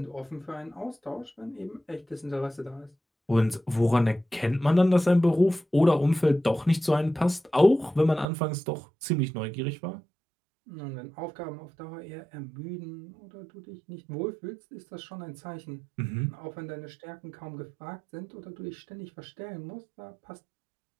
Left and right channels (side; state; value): left; drops out; at 8.2 s